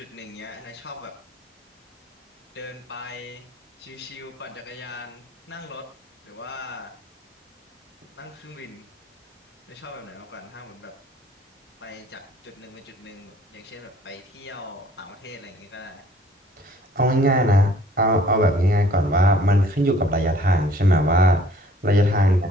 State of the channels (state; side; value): normal; both; correlation 0.56